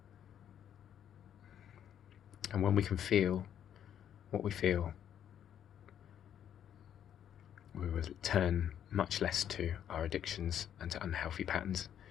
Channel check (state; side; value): quieter; right; 9.7 dB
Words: And when we can feel what we feel, we will turn much less to our addictions and to unhealthy patterns.